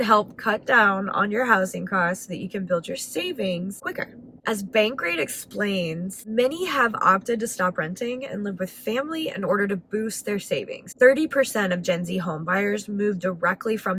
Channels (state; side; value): identical; both; correlation 1.00